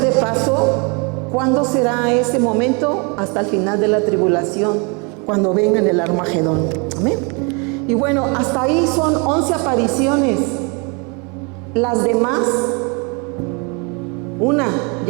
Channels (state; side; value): quieter; left; 32.4 dB